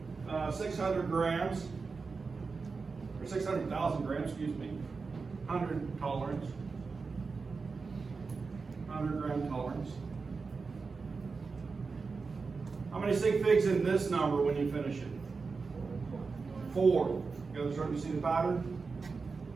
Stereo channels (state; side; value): quieter; left; 4.6 dB